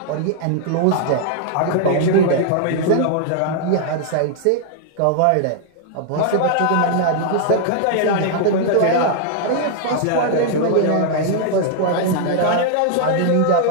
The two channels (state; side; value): different; both; correlation -0.01